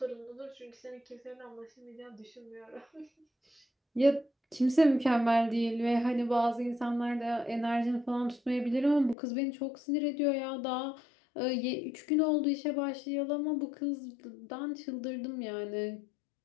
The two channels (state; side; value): drops out; right; at 9.2 s